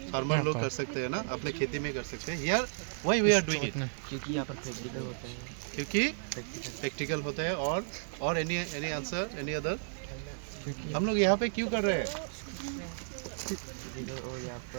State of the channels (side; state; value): left; silent; digital silence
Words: फार्मर लोग कर सकते हैं ना, अपने खेती में कर सकते हैं. Here why we are doing it? क्योंकि यहाँ पर प्रैक्टिकल होता है. क्योंकि प्रैक्टिकल होता है और any answer any other? हम लोग यहाँ पे क्यों कर रहे हैं? और यहाँ